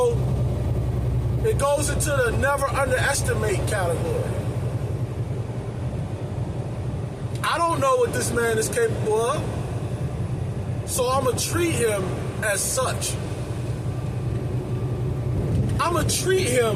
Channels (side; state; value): both; identical; correlation 1.00